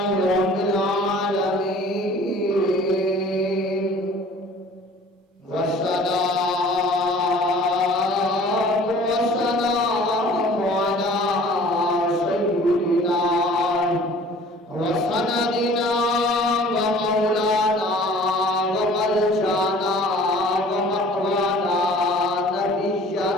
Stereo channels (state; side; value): normal; both; correlation 0.49